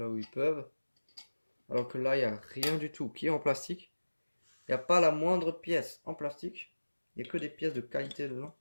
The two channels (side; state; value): both; inverted; correlation -1.00